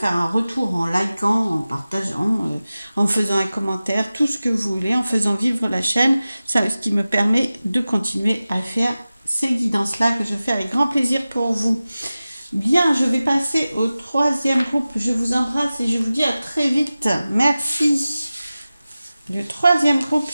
un retour en likant, en partageant, en faisant un commentaire, tout ce que vous voulez, en faisant vivre la chaîne, ça, ce qui me permet de continuer à faire ces guidances-là que je fais avec grand plaisir pour vous. Bien, je vais passer au troisième groupe. Je vous embrasse et je vous dis à très vite. Merci. Le troisième groupe,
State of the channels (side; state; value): both; inverted; correlation -0.96